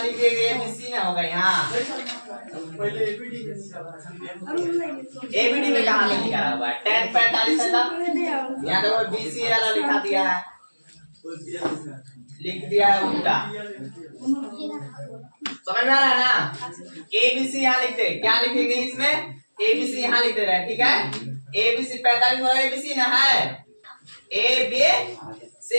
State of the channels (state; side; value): inverted; both; correlation -1.00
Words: ABC ना होगा यहाँ, ABD में कहाँ पे लिखा हुआ है, tan 45 है ना, यहाँ तो BC वाला लिखा दिया है, लिख दिया है उल्टा, समझ में आ रहा है ना। ABC यहाँ लिखते हैं, क्या लिखेंगे इसमें, ABC यहाँ लिख दे रहे हैं, ठीक है। ABC 45 वाला ABC ना है, ABC,